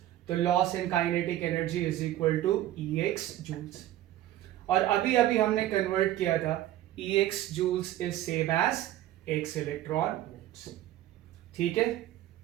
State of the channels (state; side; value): quieter; left; 13.7 dB